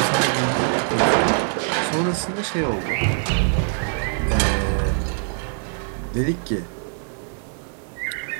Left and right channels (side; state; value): left; silent; digital silence